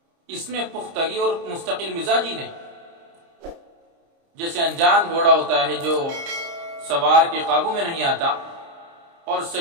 اس میں پختگی اور مستقل مزاج ہی نہیں۔ جیسے انجان گھوڑا ہوتا ہے جو سوار کے قابو میں نہیں آتا اور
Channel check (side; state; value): left; late; 30 ms